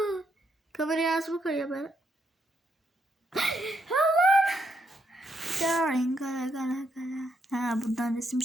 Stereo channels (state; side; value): normal; both; correlation 0.78